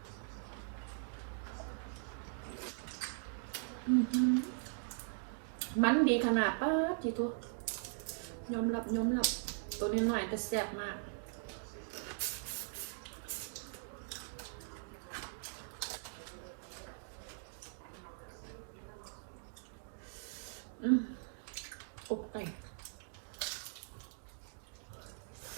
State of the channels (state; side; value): silent; left; digital silence